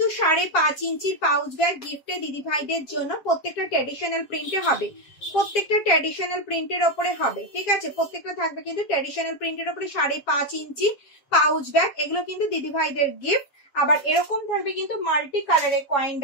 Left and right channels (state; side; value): late; right; 7.3 ms